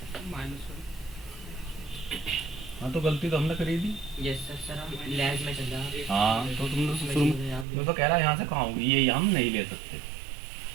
हाँ तो गलती तो हमने करी थी। यस सर, हम लैब में चल रहा है। हाँ तो तुमने तो शुरू में तो कह रहा यहाँ से कहाँ होगी, ये हम नहीं ले सकते,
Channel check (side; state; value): left; drops out; at 7.7 s